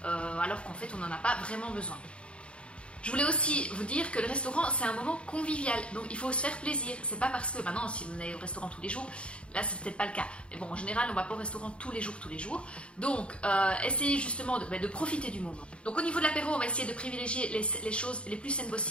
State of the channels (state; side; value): late; right; 0.058 ms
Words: alors qu'en fait on n'en a pas vraiment besoin. Je voulais aussi vous dire que le restaurant c'est un moment convivial, donc il faut se faire plaisir. C'est pas parce que maintenant si vous allez au restaurant tous les jours, là c'est peut-être pas le cas. Mais bon, en général on va pas au restaurant tous les jours. Donc essayez justement de profiter du moment. Donc au niveau de l'apéro, on va essayer de privilégier les choses les plus saines